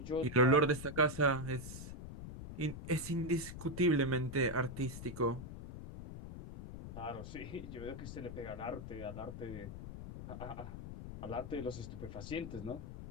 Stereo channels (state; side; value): noise; left; rumble, 10 dB below the sound